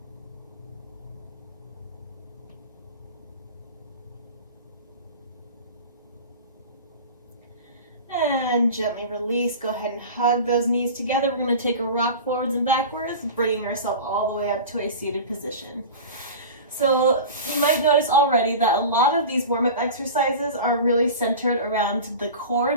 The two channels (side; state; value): both; inverted; correlation -0.33